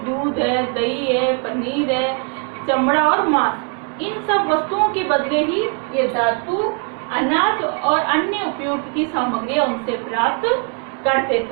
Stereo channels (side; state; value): left; quieter; 37.7 dB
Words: दूध है, दही है, पनीर है, चमड़ा और मांस, इन सब वस्तुओं के बदले ही ये धातु, अनाज और अन्य उपयोग की सामग्री उनसे प्राप्त करते